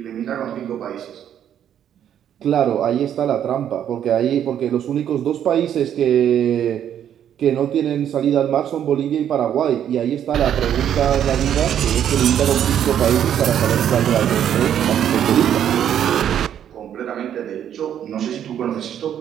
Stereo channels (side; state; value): left; quieter; 9.8 dB